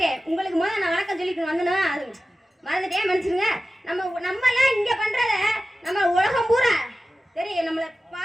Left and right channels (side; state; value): both; normal; correlation 0.95